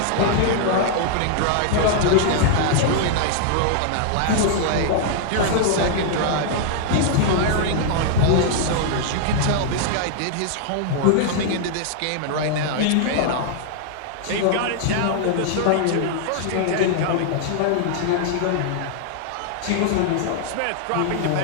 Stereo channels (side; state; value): both; different; correlation -0.01